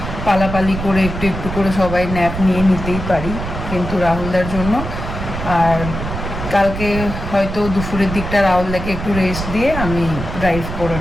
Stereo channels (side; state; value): right; noise; rumble, 6 dB below the sound